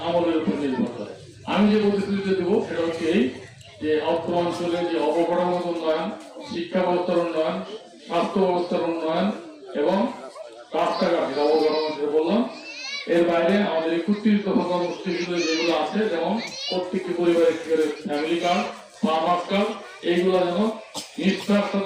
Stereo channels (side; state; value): both; identical; correlation 1.00